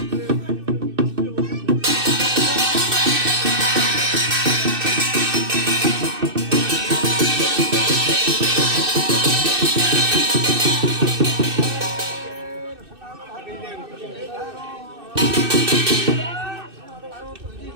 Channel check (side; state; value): left; late; 2.6 ms